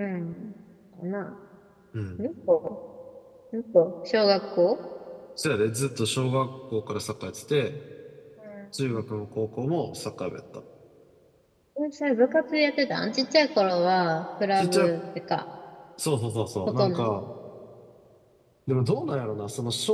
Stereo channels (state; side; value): identical; both; correlation 1.00